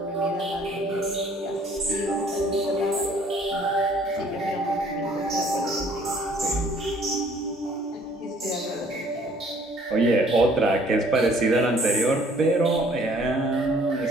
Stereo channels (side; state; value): both; normal; correlation 0.59